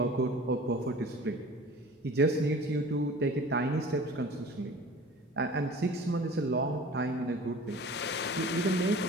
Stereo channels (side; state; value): both; normal; correlation 0.43